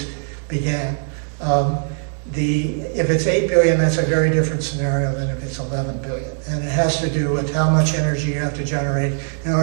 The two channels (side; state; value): left; silent; 56 dB below the other